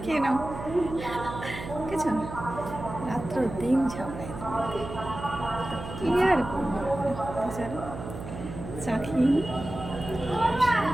খেয়ে নাও। বুঝেছ, রাত্র দিন ঝগড়া এদের মধ্যে। কি আর করবো বলো? চলো চা খেয়ে নিই।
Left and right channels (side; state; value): right; noise; hum, 10 dB below the sound